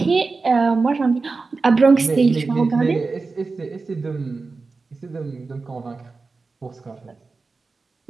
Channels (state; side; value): quieter; left; 4.1 dB